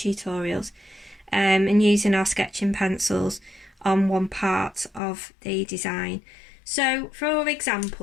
and using our sketching pencils on one part of the design. So for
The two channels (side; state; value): right; drops out; at 5.0 s